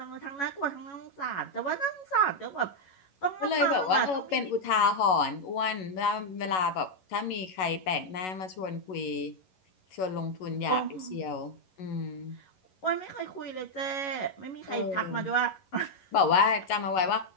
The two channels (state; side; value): late; right; 11 ms